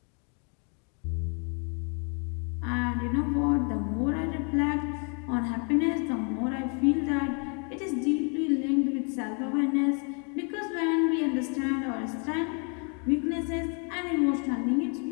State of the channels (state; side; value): quieter; right; 38.1 dB